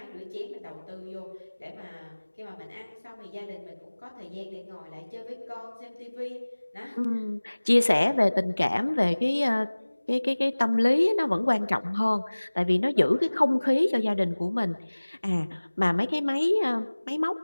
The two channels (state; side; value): inverted; both; correlation -1.00